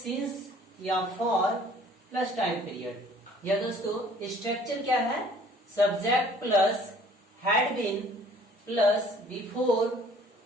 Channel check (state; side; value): normal; both; correlation 0.54